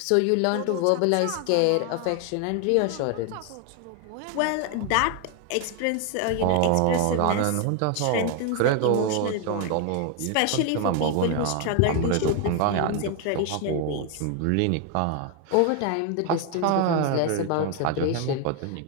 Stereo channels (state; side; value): different; both; correlation 0.01